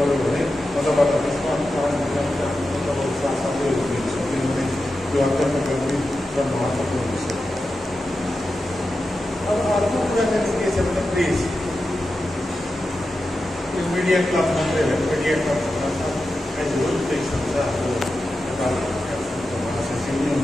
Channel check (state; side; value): normal; both; correlation 0.91